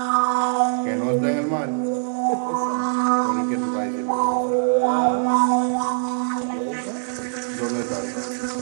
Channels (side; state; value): left; silent; 64 dB below the other